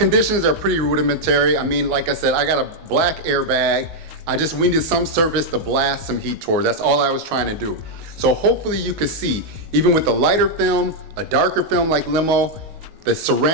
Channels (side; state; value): left; late; 19 ms